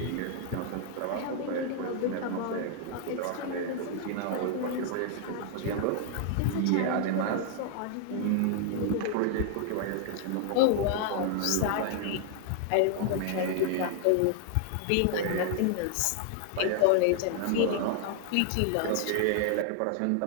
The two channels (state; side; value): different; both; correlation 0.00